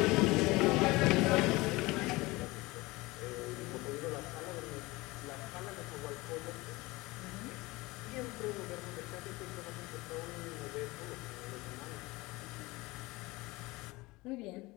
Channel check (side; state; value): right; quieter; 21.9 dB